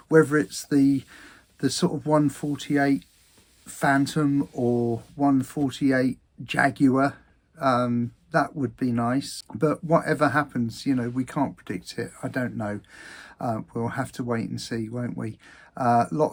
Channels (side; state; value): both; identical; correlation 1.00